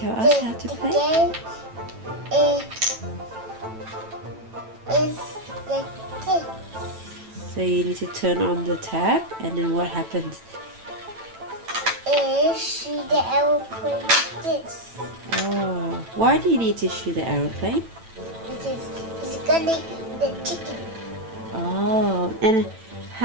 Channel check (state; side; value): late; left; 9.1 ms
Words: us how to play? The game is like this. So you need to turn on the tab, and then what happens? Shoot the aeroplane like this. Oh, why do you need to shoot the aeroplane? Because it's gonna eat the chicken. Oh, and